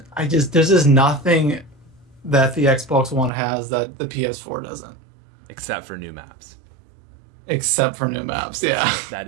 there's just nothing that the Xbox One has that the PS4 doesn't. Except for new maps. Yeah.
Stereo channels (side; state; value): left; drops out; at 3.3 s